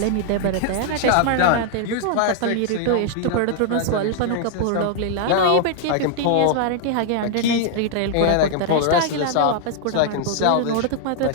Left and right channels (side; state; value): both; different; correlation 0.00